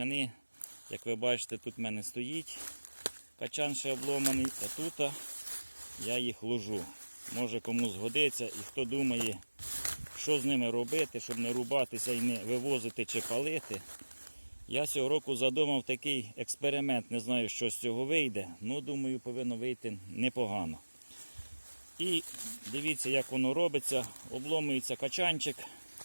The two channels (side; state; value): both; inverted; correlation -1.00